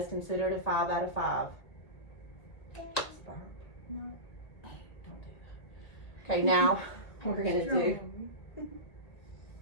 considered a 5 out of 5. No. Don't do that. Okay, now we're gonna do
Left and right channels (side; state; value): right; late; 1.8 ms